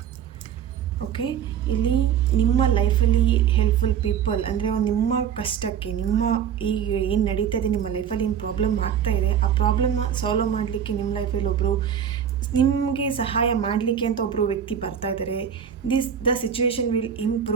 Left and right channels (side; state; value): left; quieter; 8.5 dB